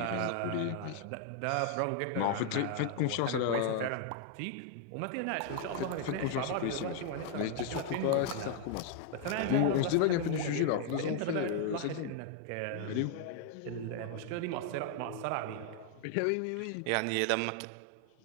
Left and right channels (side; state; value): both; different; correlation 0.00